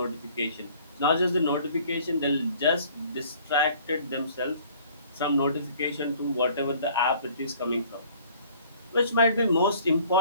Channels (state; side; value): inverted; both; correlation -0.54